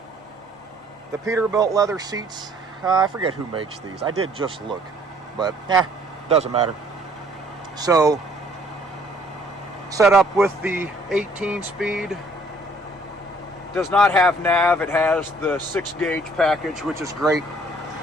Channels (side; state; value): both; normal; correlation 0.60